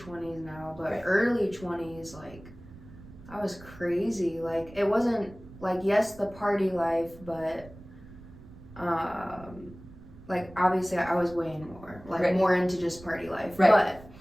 now, but early 20s, like, I was crazy. Like, it wasn't, like, yes, the party life, but, like, obviously I was way more, like, more into just party life. Right. But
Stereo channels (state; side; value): noise; right; rumble, 19 dB below the sound